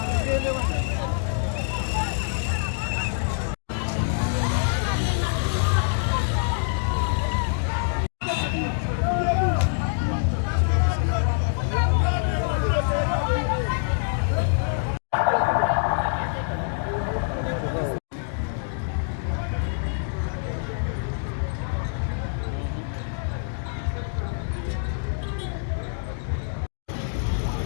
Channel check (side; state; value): right; silent; digital silence